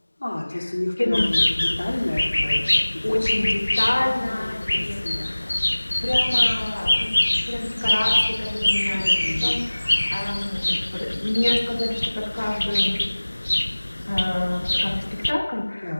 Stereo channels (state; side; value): inverted; both; correlation -1.00